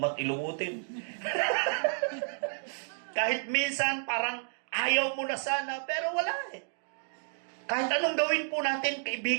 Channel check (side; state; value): left; silent; digital silence